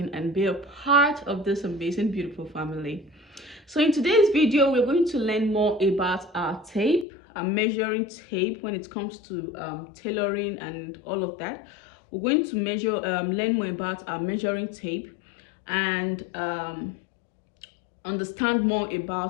and be a part of this amazing, beautiful family. So in today's video, we're going to learn more about our tape, our measuring tape when it comes to tailoring and all of that. We're going to learn more about our measuring tape and understand more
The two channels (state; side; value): drops out; right; at 7.1 s